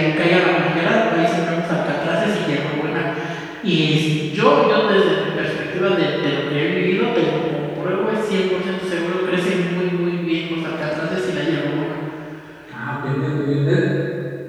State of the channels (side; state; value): both; identical; correlation 1.00